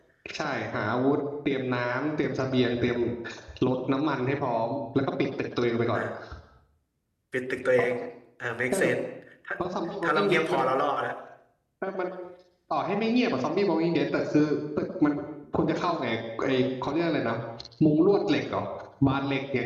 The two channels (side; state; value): both; identical; correlation 1.00